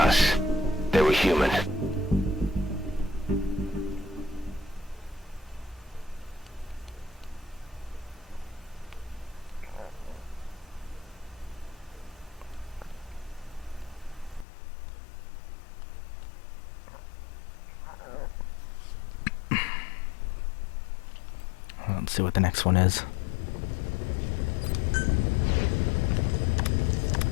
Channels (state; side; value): drops out; right; at 14.5 s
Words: They were human. Let's see what the next one is.